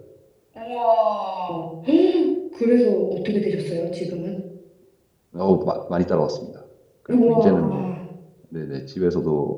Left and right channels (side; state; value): both; identical; correlation 1.00